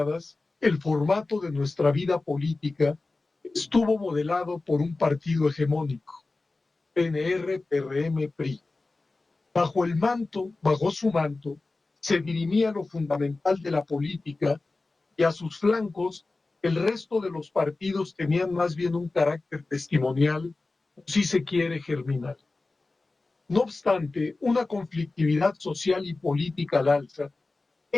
el formato de nuestra vida política estuvo modelado por un partido hegemónico, PNR, PRM, PRI. Bajo su manto, se dirimía lo fundamental de la política y a sus flancos el resto de los partidos tenían más bien un carácter testimonial, si se quiere, germinal. No obstante, una conflictividad social y política al alza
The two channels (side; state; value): right; quieter; 3.4 dB